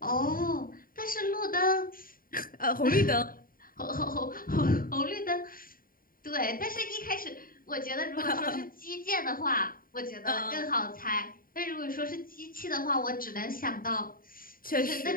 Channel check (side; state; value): right; late; 0.41 ms